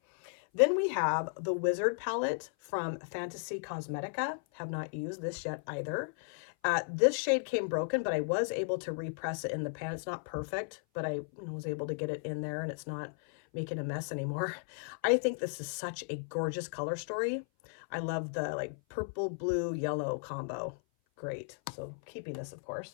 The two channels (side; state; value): right; silent; 55 dB below the other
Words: Then we have the Wizard palette from Fantasy Cosmetica. Have not used this yet either. This shade came broken, but I was able to repress it in the pan. It's not perfect, but I was able to get it in there and it's not making a mess anymore. I think this is such a gorgeous color story. I love the like purple, blue, yellow combo. Great. So keeping this, of